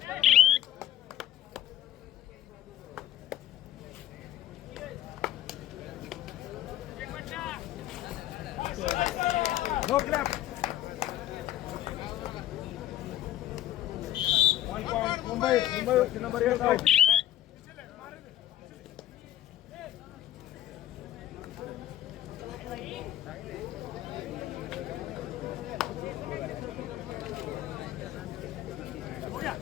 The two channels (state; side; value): quieter; right; 12.9 dB